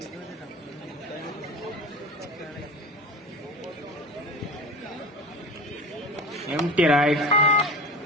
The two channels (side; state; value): both; normal; correlation 0.31